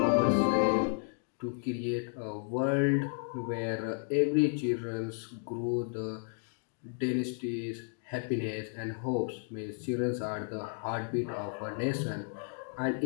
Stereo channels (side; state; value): right; silent; 56 dB below the other